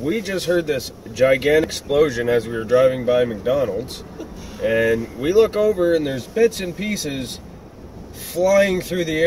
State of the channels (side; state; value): both; identical; correlation 1.00